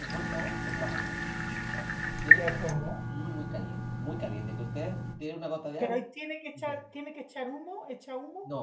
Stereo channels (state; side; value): identical; both; correlation 1.00